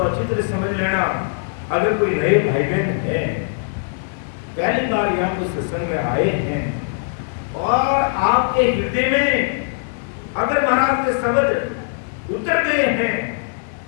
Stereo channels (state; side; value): silent; right; digital silence